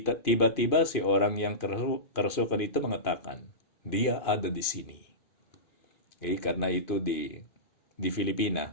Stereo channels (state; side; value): late; right; 2.5 ms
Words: si orang yang kerasukan itu mengatakan, dia ada di sini. Karena itu di